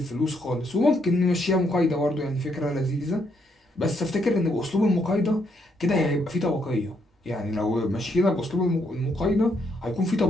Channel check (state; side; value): normal; both; correlation 0.74